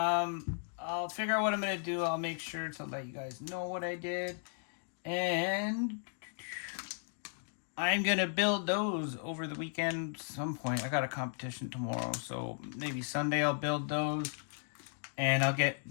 figure out what I'm going to do. I'll make sure to let you guys know what I did. And I'm going to build those over the weekend at some point. I got a competition tomorrow, so maybe Sunday I'll build those. And I'll get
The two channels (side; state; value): right; silent; digital silence